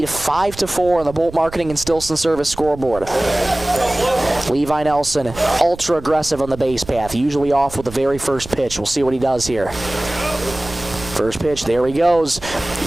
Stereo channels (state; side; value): noise; right; rumble, 15 dB below the sound